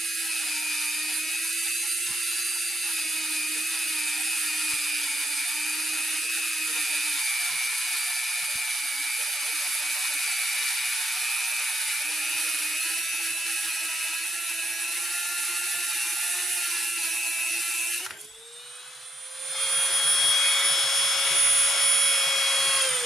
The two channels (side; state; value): both; normal; correlation 0.79